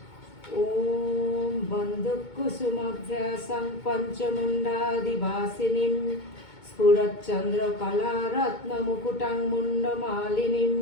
ওম বন্দুকুসুমভ্যাসং পঞ্চমুণ্ডাদিবাসিনীম স্ফুরচ্চন্দ্রকলারত্নমুকুটং মুণ্ডমালিনীম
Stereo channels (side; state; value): right; late; 2.2 ms